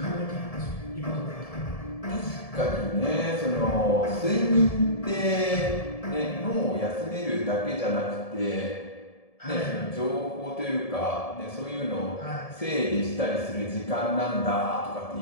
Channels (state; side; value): late; right; 1.7 ms